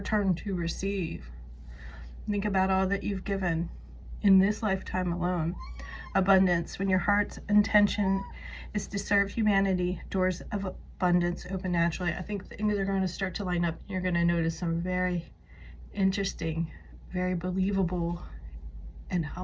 turn to receive. Think about all that you've given in this lifetime alone. Abundance, when your heart's intention is to serve humanity, doors of abundance open naturally. I think things are going to start to line up. You're going to notice some very interesting, very believable, and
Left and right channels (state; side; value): identical; both; correlation 1.00